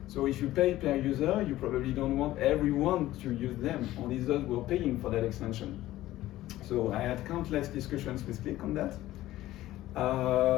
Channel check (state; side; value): quieter; right; 15.4 dB